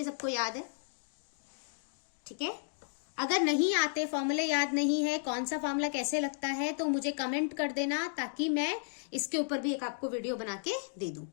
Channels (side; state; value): right; silent; digital silence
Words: सबको याद है, ठीक है। अगर नहीं आते, फॉर्मूले याद नहीं है, कौन सा फॉर्मूला कैसे लगता है, तो मुझे कमेंट कर देना, ताकि मैं इसके ऊपर भी एक आपको वीडियो बना के दे दूं,